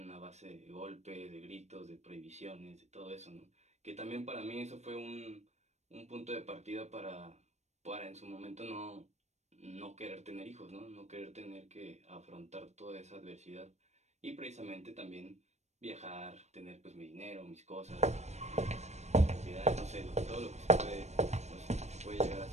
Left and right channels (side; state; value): left; late; 0.32 ms